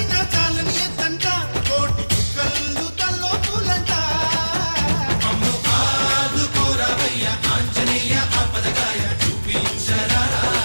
చాలని ఎత్తంట కోటి చుక్కలు తల్లో పూలంట మమ్ము ఆదుకోరవయ్య ఆంజనేయ ఆపదగాయ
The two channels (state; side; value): inverted; both; correlation -1.00